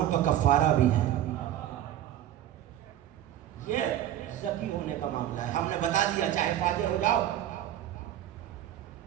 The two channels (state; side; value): quieter; left; 12.0 dB